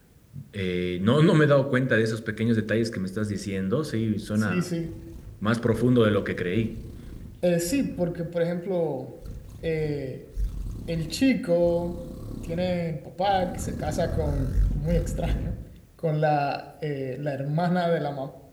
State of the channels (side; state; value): both; identical; correlation 1.00